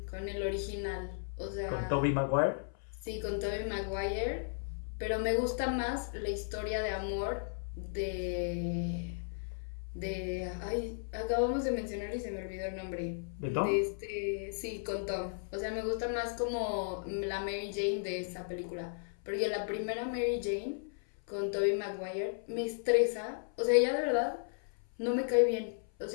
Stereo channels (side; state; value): right; silent; 54 dB below the other